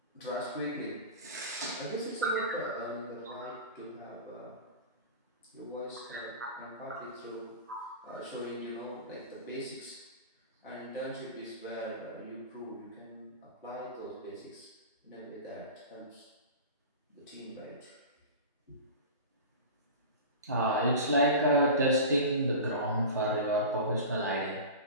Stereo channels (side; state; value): both; inverted; correlation -0.32